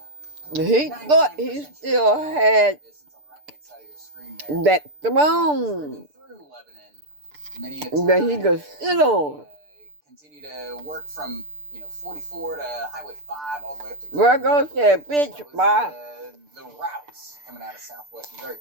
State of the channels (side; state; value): left; late; 6.8 ms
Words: He thought he still had that throne that he could sit on. Continue to work from 44 to Highway 5 all the way up to Virgo said, bitch, bye. The routes coming out of southwest Missouri.